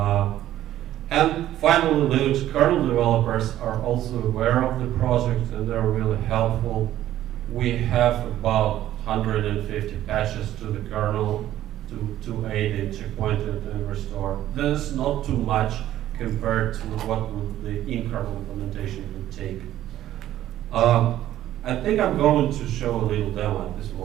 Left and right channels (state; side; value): quieter; left; 13.0 dB